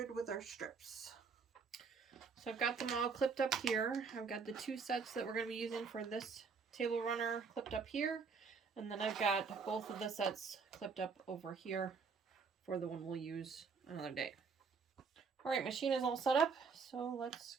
with our strips. So I've got them all clipped up here. I've got the 2 sets that we're going to be using for this table runner clipped up here. And then I've got both of the sets clipped up over here for the one we'll use another day. Alright, machine is all set up. So let's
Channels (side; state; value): left; quieter; 5.3 dB